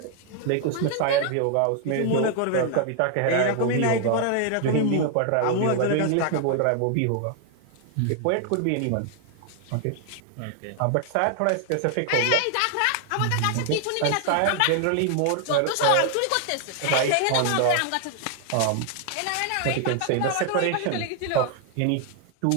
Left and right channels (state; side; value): different; both; correlation 0.00